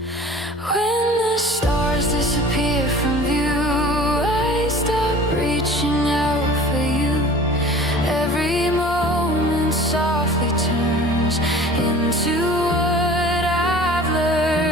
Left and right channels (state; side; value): normal; both; correlation 0.44